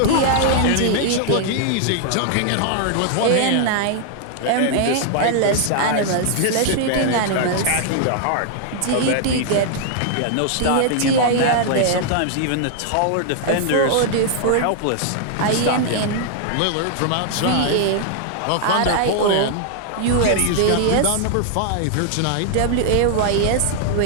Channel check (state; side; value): different; both; correlation -0.01